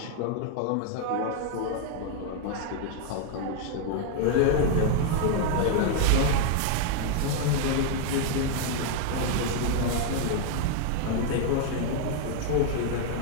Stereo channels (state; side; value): different; both; correlation 0.00